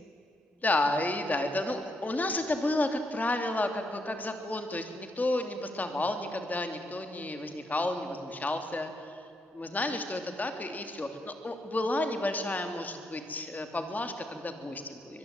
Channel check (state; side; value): normal; both; correlation 0.78